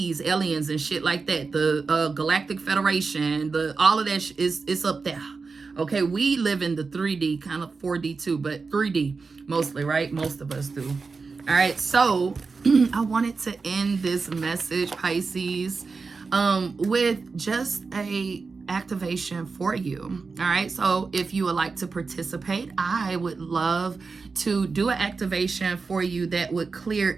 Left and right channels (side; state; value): left; quieter; 4.5 dB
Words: aliens, and shit like that. The Galactic Federation, all of that is up there. Okay, we live in the 3D, kind of 4D too, but 3D mostly, right? Most of us do. All right, so I wanted to end this message, Pisces, with just a activation for you. All right, so if you would like to participate, I would love to do an activation for you that would clear